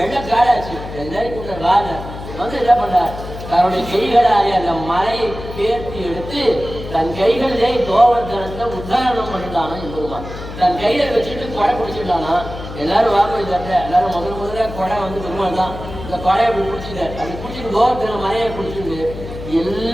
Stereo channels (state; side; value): noise; left; hum, 11 dB below the sound